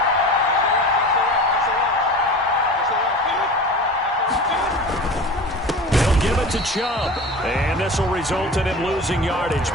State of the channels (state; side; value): normal; both; correlation 0.35